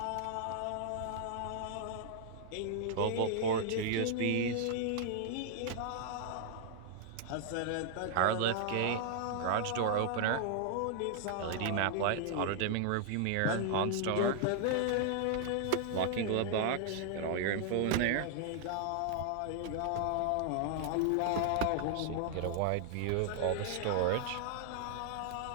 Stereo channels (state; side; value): different; both; correlation 0.00